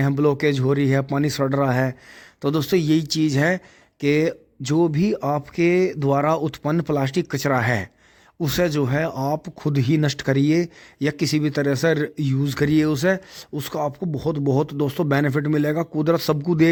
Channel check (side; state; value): both; identical; correlation 1.00